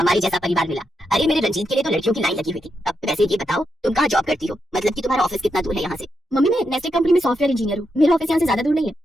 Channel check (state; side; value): normal; both; correlation 0.83